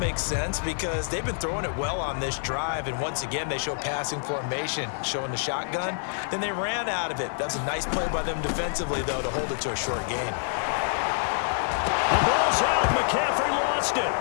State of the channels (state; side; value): silent; right; digital silence